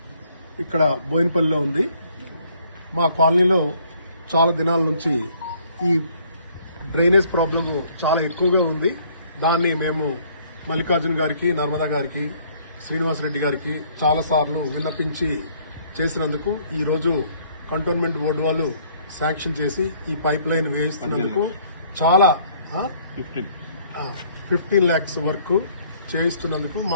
ఇక్కడ బోయినపల్లిలో ఉంది. మా కాలనీలో చాలా దినాల నుంచి ఈ డ్రైనేజ్ ప్రాబ్లమ్ చాలా ఎక్కువగా ఉంది. దాన్ని మేము మల్లికార్జున గారికి, నర్మదా గారికి, శ్రీనివాసరెడ్డి గారికి చాలాసార్లు విన్నపించి చేసినందుకు ఈరోజు కంటోన్మెంట్ బోర్డు వాళ్ళు శాంక్షన్ చేసి ఈ పైప్ లైన్ వేయిస్తున్నందుకు చాలా 15 lakhs వరకు చేయిస్తున్నందుకు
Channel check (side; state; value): both; inverted; correlation -0.62